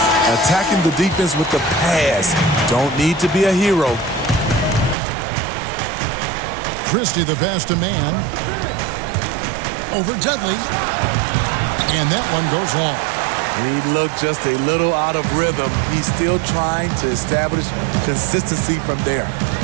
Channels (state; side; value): drops out; left; at 5.0 s